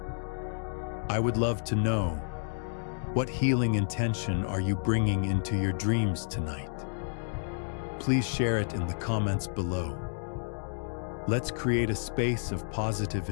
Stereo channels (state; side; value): silent; right; digital silence